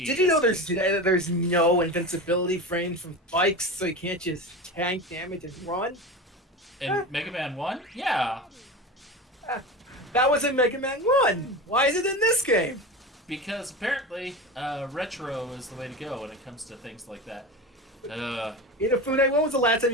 you know there's no invincibility frames from spikes, so you can't just tank damage and run? In Mega Man 1? Yeah. That was in Mega Man 1. Why is it in this game? Because apparently, retro is the way to go when it comes to things like that. Inafune, when was the last time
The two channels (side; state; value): both; normal; correlation 0.27